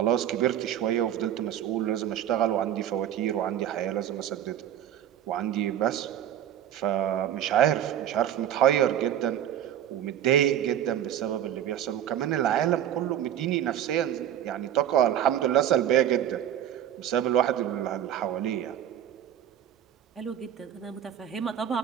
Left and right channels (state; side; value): quieter; left; 10.6 dB